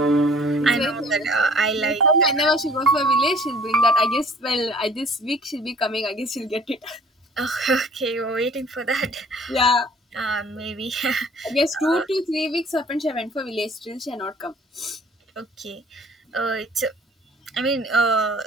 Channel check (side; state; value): both; normal; correlation 0.53